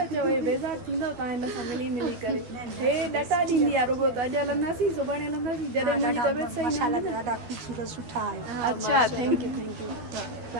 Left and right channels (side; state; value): left; late; 12 ms